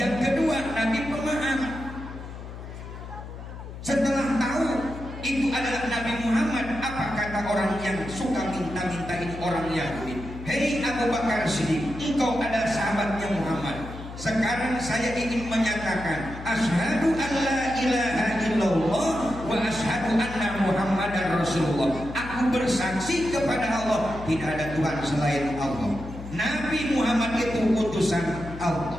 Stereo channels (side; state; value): left; noise; hum, 11 dB below the sound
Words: kedua, Nabi pemaaf. Setelah tahu itu adalah Nabi Muhammad, apa kata orang yang suka minta-minta ini, orang Yahudi? "Hei Abu Bakar Siddiq, engkau adalah sahabatnya Muhammad. Sekarang saya ingin menyatakan, asyhadu alla ilaha illallah wa asyhadu anna Muhammadar Rasulullah. Aku Aku bersaksi kepada Allah tidak ada Tuhan selain Allah. Nabi Muhammad itu utusan